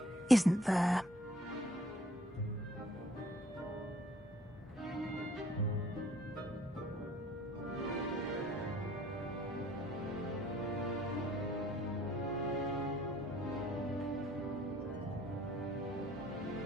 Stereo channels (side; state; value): both; normal; correlation 0.59